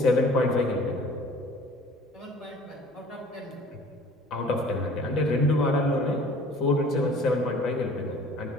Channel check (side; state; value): both; normal; correlation 0.49